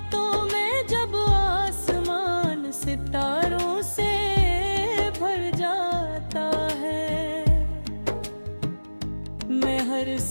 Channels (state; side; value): inverted; both; correlation -1.00